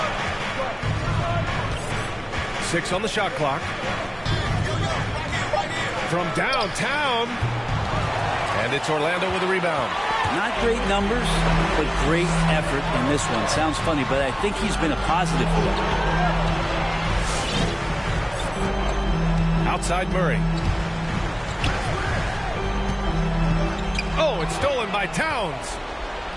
6 on the shot clock. From downtown. And it's Orlando with a rebound. Not great numbers, but great effort in this one. Sounds funny, but I think he's been a positive for them. Outside Murray. Oh, it's stolen by Towns.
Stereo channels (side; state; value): both; identical; correlation 1.00